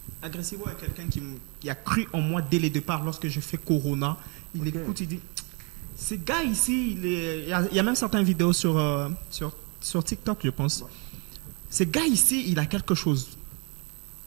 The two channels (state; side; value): quieter; left; 32.9 dB